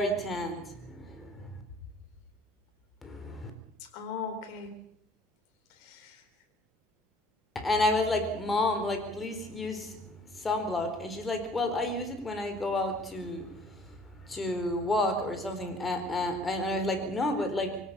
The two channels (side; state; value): both; normal; correlation 0.54